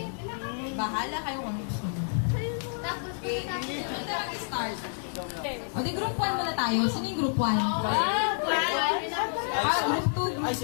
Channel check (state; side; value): silent; right; digital silence